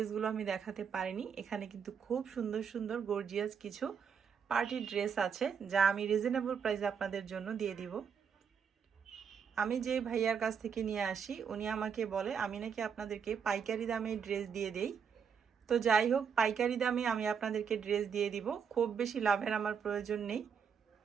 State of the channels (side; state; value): left; quieter; 6.9 dB